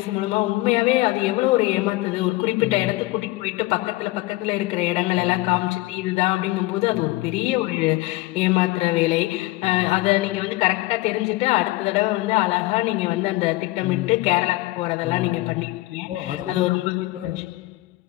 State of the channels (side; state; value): right; quieter; 19.8 dB